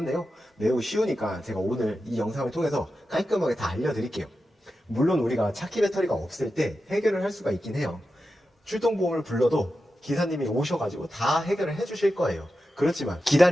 매우 쉬우니까 제가 오늘 이 영상을 통해서 깔끔하게 다 알려드릴게요. 물론 우리가 차키 배터리가 없을 때 해결을 할 수가 있긴 해요. 출동보험을 불러도 기사님이 오셔가지고 다 해결을 해주실 거예요. 그렇지만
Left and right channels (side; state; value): both; normal; correlation 0.91